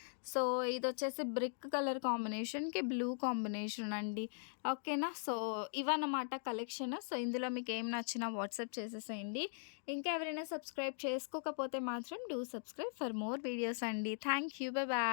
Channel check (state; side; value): silent; right; digital silence